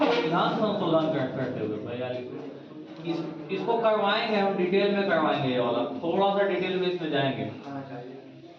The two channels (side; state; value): both; identical; correlation 1.00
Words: संशोधन करते हुए। 42 इसको करवाएंगे हम, डिटेल में करवाएंगे ये वाला, थोड़ा सा डिटेल में इसमें जाएंगे।